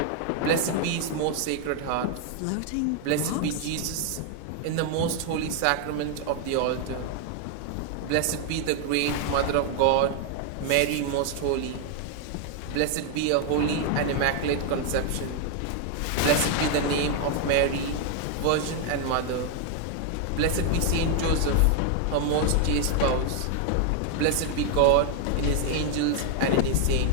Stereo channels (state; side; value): different; both; correlation 0.00